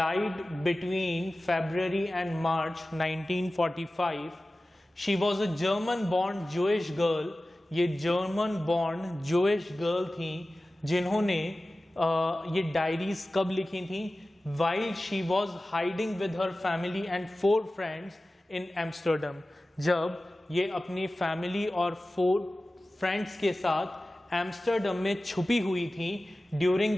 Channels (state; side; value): normal; both; correlation 0.96